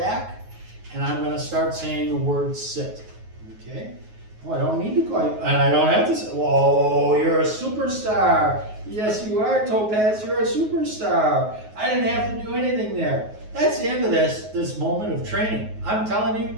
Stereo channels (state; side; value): late; left; 9.4 ms